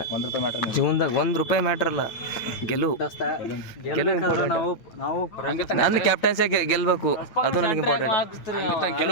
$1 ಮ್ಯಾಟ್ರ್ ಜೀವನದಾಗ $1 ಮ್ಯಾಟ್ರ್ ಅಲ್ಲ ಗೆಲುವು ಇಂಪಾರ್ಟೆಂಟ್ ನಂದು ಕ್ಯಾಪ್ಟನ್ಸಿ ಗೆಲ್ಬೇಕು ಅದು ನನಗೆ ಇಂಪಾರ್ಟೆಂಟ್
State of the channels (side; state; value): right; late; 8.9 ms